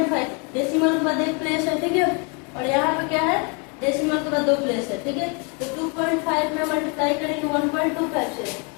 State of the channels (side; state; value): right; quieter; 34.5 dB